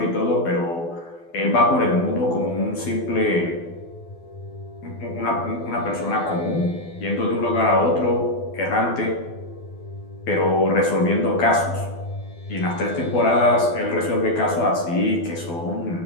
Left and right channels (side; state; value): right; late; 12 ms